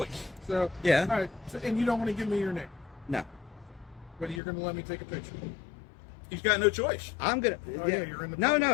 So yeah. All right. So, and you don't want to give me your name? No. But you're going to let me take a picture? He's got no choice. I'm gonna. Oh, yeah, you're in the. No,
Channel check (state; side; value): drops out; right; at 4.4 s